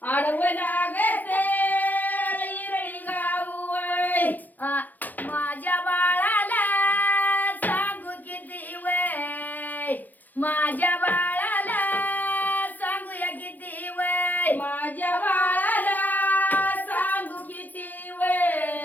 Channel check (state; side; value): late; right; 0.084 ms